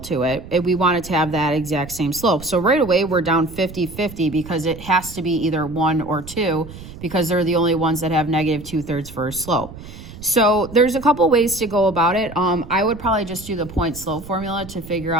it, we want it to have that exact same slope. So right away, we're down 50-50 because it has to be either 1 or 2 because they're the only ones that have -2/3 for a slope. So there's a couple ways to go about it. I would probably just do the point slope formula to figure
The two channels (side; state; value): right; noise; rumble, 15 dB below the sound